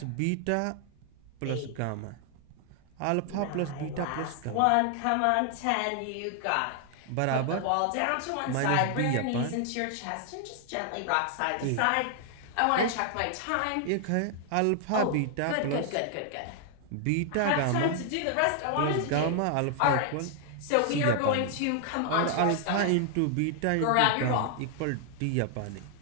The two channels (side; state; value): both; different; correlation 0.00